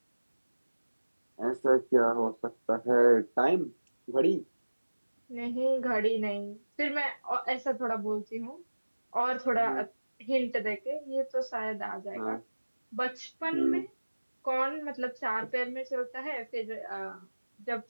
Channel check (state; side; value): inverted; both; correlation -1.00